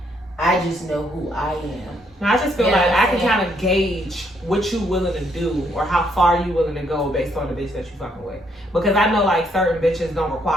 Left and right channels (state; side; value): normal; both; correlation 0.72